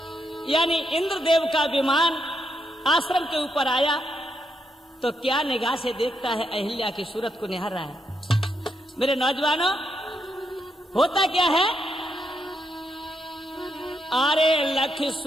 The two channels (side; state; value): both; normal; correlation 0.80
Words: यानी इंद्रदेव का विमान आश्रम के ऊपर आया तो क्या निगाह से देखता है, अहिल्या की सूरत को निहार रहा है। मेरे नौजवानों होता क्या है, अरे लख